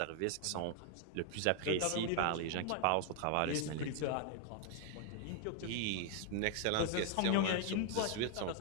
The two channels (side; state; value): both; different; correlation 0.00